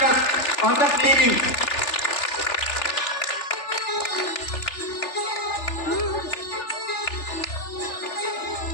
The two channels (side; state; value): right; late; 3.4 ms